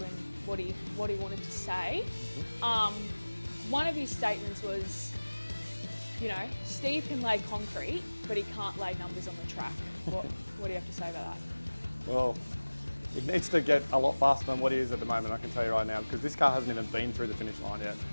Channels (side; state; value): both; inverted; correlation -1.00